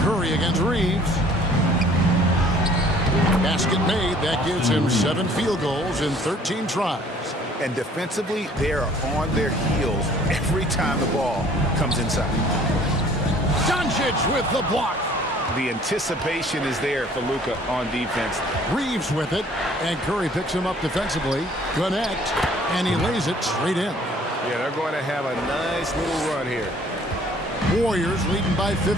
Curry against Reeves. Basket made. That gives him 7 field goals in 13 tries. And defensively, they are on their heels every time the ball comes inside. Doncic with the block. The anticipation is there for Luka on defense. Reeves with it, and Curry picks him up defensively. Connect, and he lays it straight in. Yeah, they're going to have a nice little run here. Warriors leading by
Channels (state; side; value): normal; both; correlation 0.55